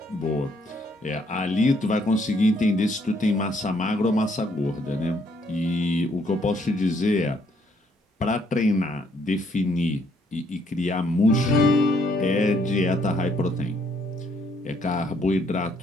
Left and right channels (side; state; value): both; normal; correlation 0.69